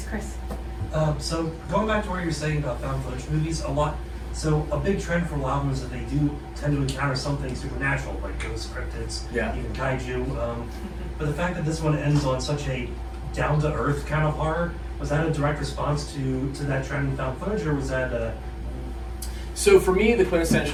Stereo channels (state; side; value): identical; both; correlation 1.00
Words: Chris. So going back to what you were saying about found footage movies, a big trend for a lot of them is that they do tend to encounter something supernatural, like ghosts, cryptids, even kaiju. But the fact that this one ends on such a down-to-earth kind of horror, was that a direct response to that trend in found footage, or was that a... So for me, the